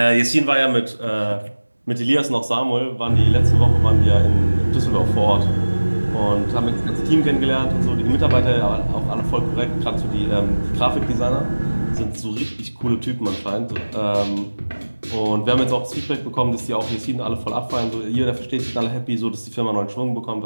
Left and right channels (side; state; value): both; inverted; correlation -1.00